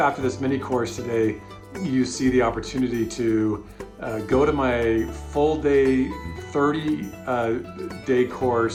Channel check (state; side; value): identical; both; correlation 1.00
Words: this mini course today, you see the opportunity to go to my full day, 30-day